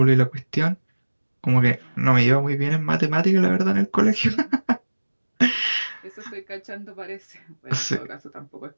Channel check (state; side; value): inverted; both; correlation -1.00